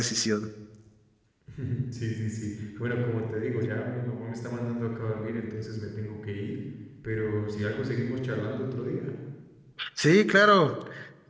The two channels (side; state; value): both; identical; correlation 1.00